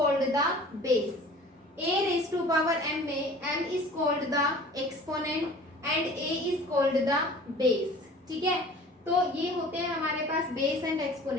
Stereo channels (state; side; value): normal; both; correlation 0.45